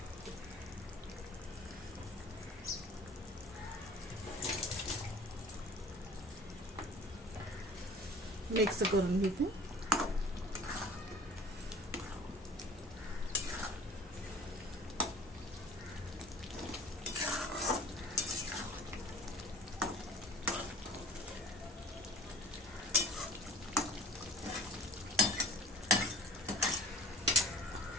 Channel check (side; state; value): both; normal; correlation 0.46